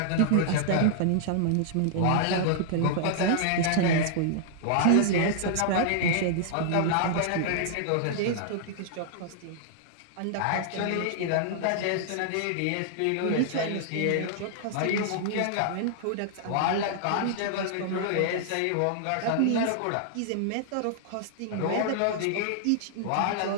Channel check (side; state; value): both; different; correlation -0.01